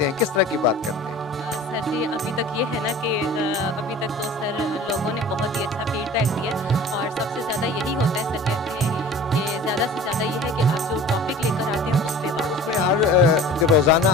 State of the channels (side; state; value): both; normal; correlation 0.42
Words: हैं, किस तरह की बात करते हैं? सर जी, अभी तक ये है ना कि अभी तक तो सर लोगों ने बहुत ही अच्छा फीडबैक दिया और सबसे ज़्यादा यही होता है, सर कहते हैं कि ज़्यादा से ज़्यादा ये है कि आप जो टॉपिक लेकर आते हैं उस पे बात। उसमें हर रोज़ाना